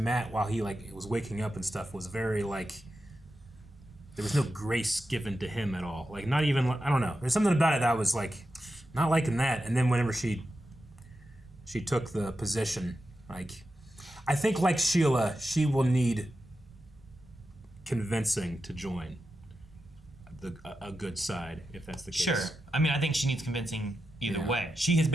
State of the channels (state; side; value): normal; both; correlation 0.90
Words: while he like was waking up and stuff was very like there was no grace given to him at all. Like not even I don't know. There's something about it that I was like not liking that. And then whenever she took the position, like I think like Sheila, she will need convincing to join a good side if that's the case. Sure. I mean, I think she needs convincing either way. She has